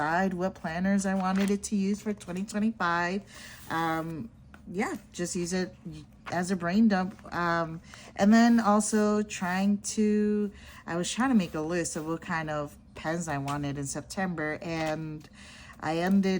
what planners I wanted it to use for 2025. Yeah, just use it as a brain dump. And then also I was trying to make a list of what kind of pens I wanted in September, and I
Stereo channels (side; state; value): both; identical; correlation 1.00